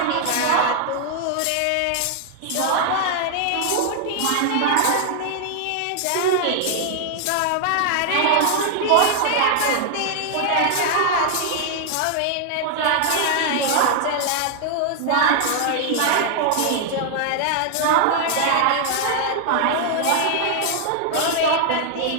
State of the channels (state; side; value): different; both; correlation 0.00